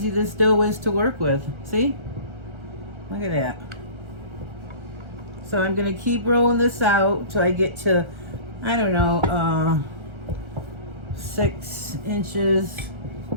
this dough is to work with. See? Look at that. So I'm going to keep rolling this out till I get to, I don't know, 6 inches.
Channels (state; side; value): late; left; 1.3 ms